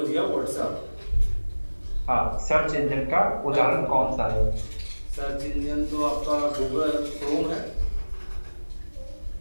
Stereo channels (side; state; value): both; inverted; correlation -1.00